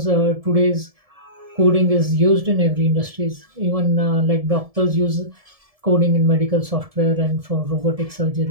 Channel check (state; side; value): late; left; 1.7 ms